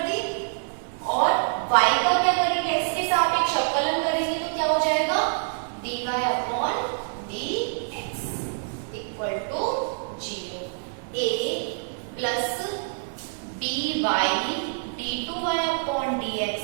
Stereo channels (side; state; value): left; silent; digital silence